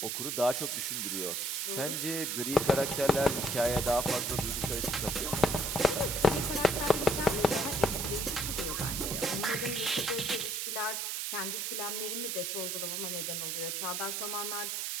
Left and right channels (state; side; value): noise; right; hiss, 1 dB below the sound